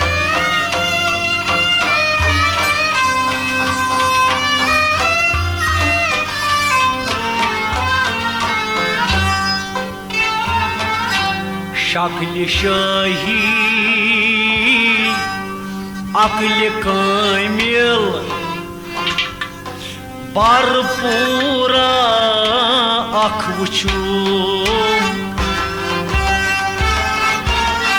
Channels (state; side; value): identical; both; correlation 1.00